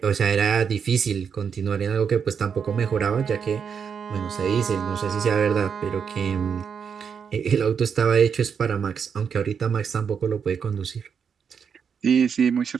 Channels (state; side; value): quieter; left; 6.8 dB